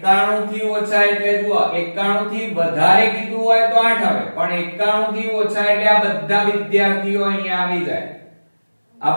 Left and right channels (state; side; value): inverted; both; correlation -1.00